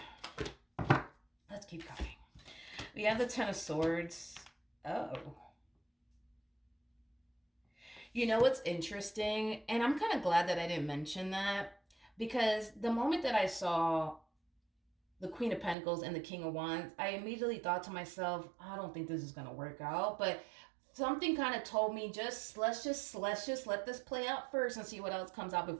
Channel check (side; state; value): left; drops out; at 15.8 s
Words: let's keep going. We have the Ten of Swords. Oh. You know what's interesting? And I'm kind of glad that I didn't mention that, because the moment that I saw the Queen of Pentacles and the King of Wands, I immediately thought to myself, I don't think this is going to work out. But something kind of told me let's just let this play out first and see what else comes out